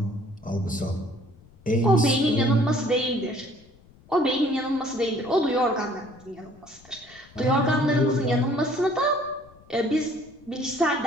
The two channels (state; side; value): noise; left; rumble, 26 dB below the sound